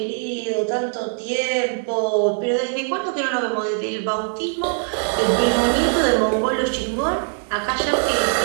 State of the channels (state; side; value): silent; left; digital silence